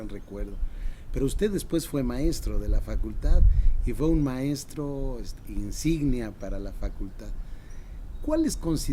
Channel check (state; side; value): identical; both; correlation 1.00